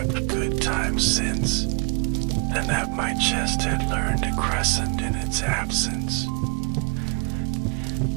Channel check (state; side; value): quieter; left; 32.2 dB